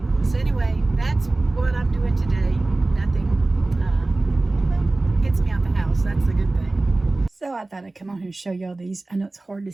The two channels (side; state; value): left; quieter; 3.0 dB